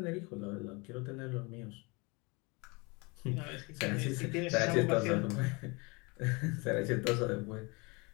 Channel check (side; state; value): right; quieter; 28.0 dB